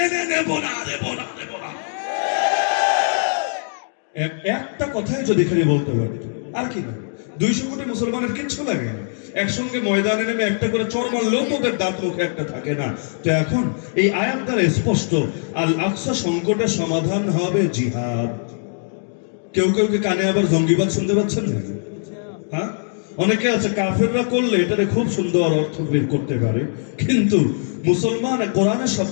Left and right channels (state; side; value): silent; right; digital silence